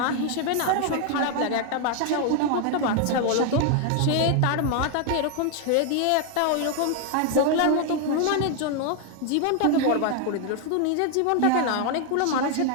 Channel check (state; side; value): different; both; correlation 0.00